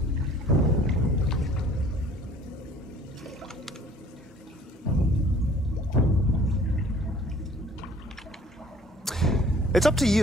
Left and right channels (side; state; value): both; normal; correlation 0.54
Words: It's up to